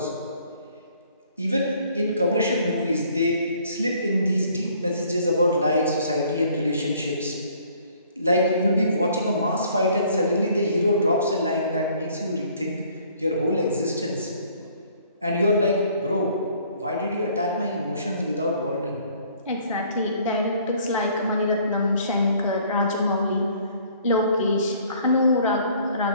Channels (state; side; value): inverted; both; correlation -0.59